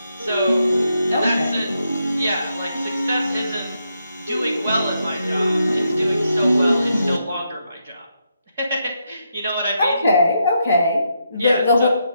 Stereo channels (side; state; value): both; inverted; correlation -0.81